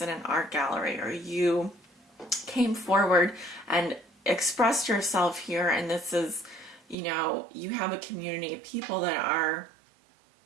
in an art gallery, or you came forward and expressed yourself here, and this is, you have a community of people that are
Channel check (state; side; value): drops out; left; at 7.0 s